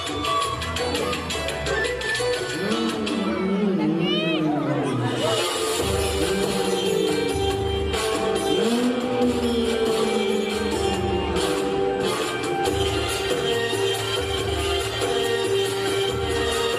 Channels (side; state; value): both; identical; correlation 1.00